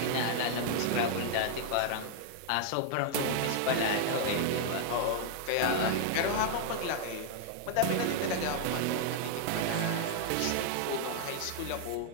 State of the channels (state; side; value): different; both; correlation 0.00